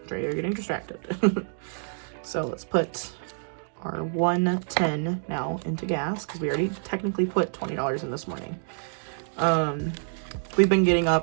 Dreia, you're getting distracted. So let's put our 110 now into gas, because we already technically put $20 in this morning. We've been getting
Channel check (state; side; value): silent; left; digital silence